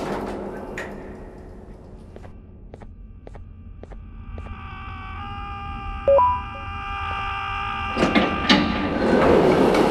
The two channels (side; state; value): both; identical; correlation 1.00